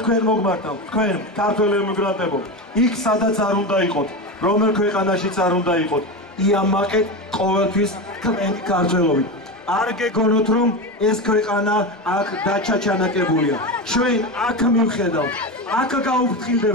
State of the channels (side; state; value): both; normal; correlation 0.20